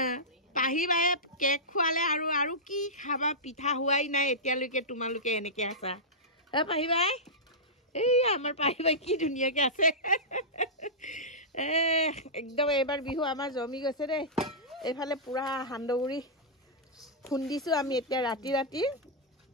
পাহি বায়ে কেক খোৱালে আৰু কি খাবা পিঠা হোৱাই নাই এতিয়ালৈকে তোমালোকে এনেকৈ আছা পাহি বাই এই আমাৰ পাহি বাই কি ধুনীয়াকৈ আছে একদম এইবাৰ বিহু আমাৰ জমি গৈছে দেই এইফালে পুৰা সান্দহগুৰি খুন্দিছোঁ আমি এতিয়া ৰাতি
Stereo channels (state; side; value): normal; both; correlation -0.14